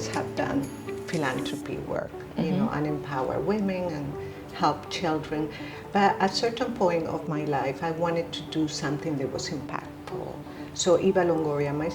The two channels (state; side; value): identical; both; correlation 1.00